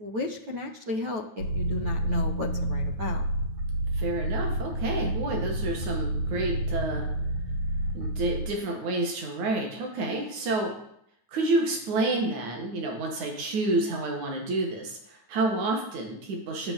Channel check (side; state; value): left; late; 9.3 ms